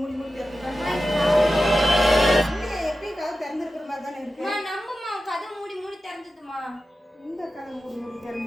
மூடி திறந்துருக்கா? இல்லையே, எப்பயும் கதவு திறந்துருக்கிற மாதிரி தானே இருக்கு. நம்புமா, கதை மூடி மூடி திறந்துதுமா. இந்த கதவு மூடி மூடி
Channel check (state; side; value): normal; both; correlation 0.93